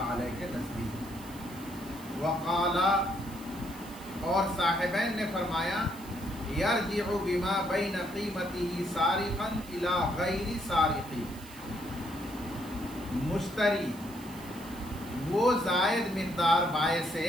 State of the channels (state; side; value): noise; right; hiss, 19 dB below the sound